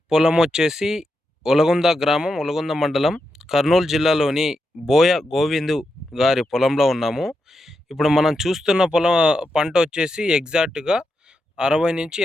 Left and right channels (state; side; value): normal; both; correlation 0.86